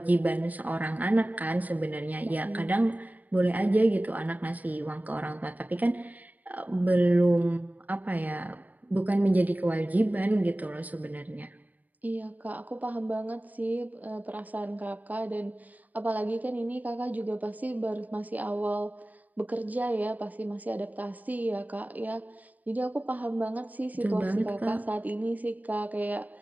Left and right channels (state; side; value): late; left; 0.079 ms